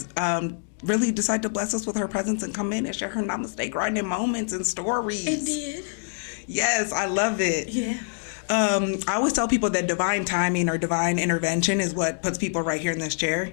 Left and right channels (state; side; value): silent; right; digital silence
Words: really decided to bless us with her presence and come in and share her I'ma Stay Grinding moments and stories. It did. Yes, I love it. Yeah. I always tell people that divine timing or divine intervention is what puts people right here in this chair.